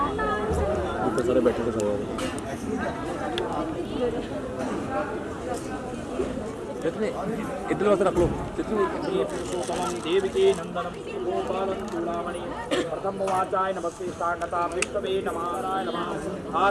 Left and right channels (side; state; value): both; identical; correlation 1.00